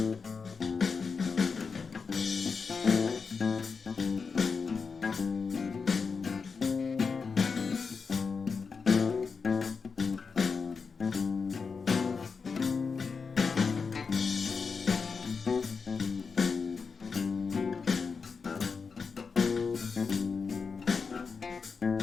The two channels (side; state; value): right; quieter; 5.2 dB